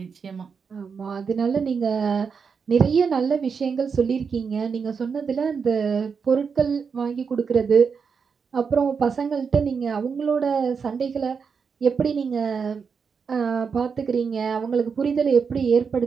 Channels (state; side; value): quieter; left; 5.9 dB